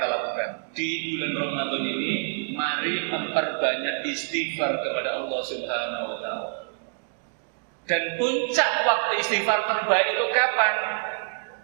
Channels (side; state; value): left; silent; digital silence